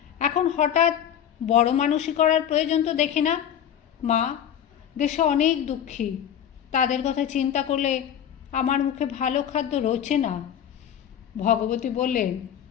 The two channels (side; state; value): right; quieter; 9.5 dB